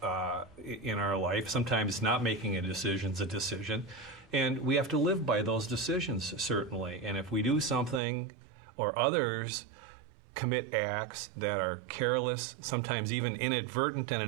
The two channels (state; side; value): drops out; left; at 8.0 s